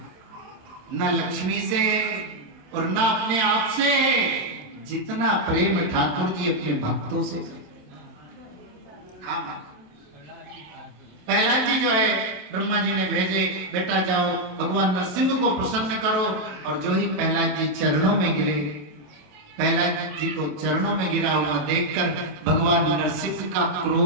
न लक्ष्मी से और न अपने आप से, जितना प्रेम ठाकुर जी अपने भक्तों से। हाँ प्रहलाद जी जो है ब्रह्मा जी ने भेजे, बेटा जाओ भगवान नरसिंह को प्रसन्न करो। और जो ही प्रहलाद जी चरणों में गिरे, प्रहलाद जी को चरणों में गिरा हुआ देखकर भगवान नरसिंह का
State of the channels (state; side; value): late; left; 27 ms